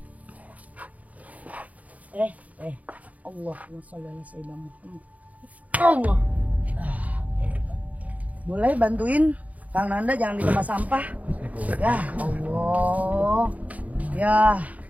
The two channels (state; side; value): late; left; 0.071 ms